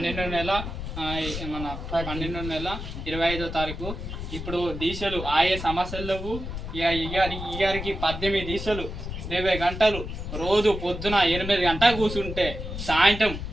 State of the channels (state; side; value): noise; left; rumble, 7 dB below the sound